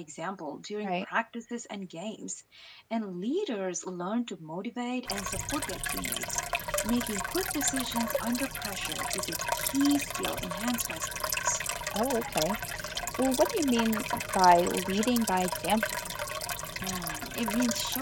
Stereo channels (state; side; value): identical; both; correlation 1.00